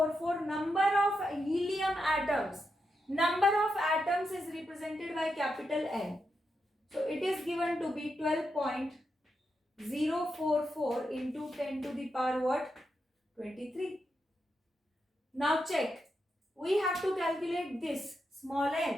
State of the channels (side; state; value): both; normal; correlation 0.85